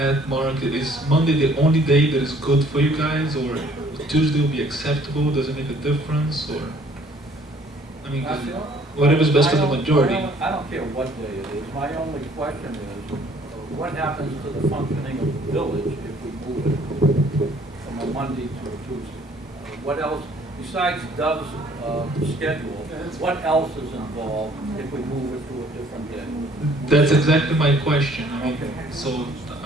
Mark, is Monday the only day that is good for you guys, or Tuesday will be acceptable? Does it make a difference, or I mean, whatever's best for the majority? I don't care what day it is. My only question is, what happens to the functioning of the village if we move it from a Monday to a Tuesday? What else, besides Dove's schedule, what else is involved if we move it to a different day? That's exactly my question. I mean, so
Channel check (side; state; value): both; normal; correlation 0.59